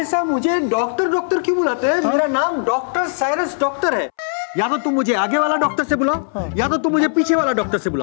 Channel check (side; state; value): right; silent; 66 dB below the other